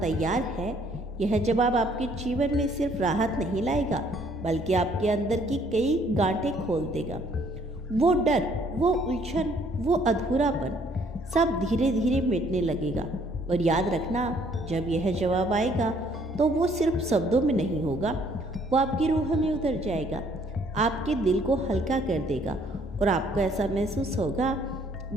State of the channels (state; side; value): normal; both; correlation 0.63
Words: है, यह जवाब आपके जीवन में सिर्फ राहत नहीं लाएगा, बल्कि आपके अंदर की कई गांठें खोल देगा। वो डर, वो उलझन, वो अधूरापन सब धीरे धीरे मिटने लगेगा। और याद रखना, जब यह जवाब आएगा तो वो सिर्फ शब्दों में नहीं होगा, वो आपकी रूह में उतर जाएगा, आपके दिल को हल्का कर देगा, और आपको ऐसा महसूस होगा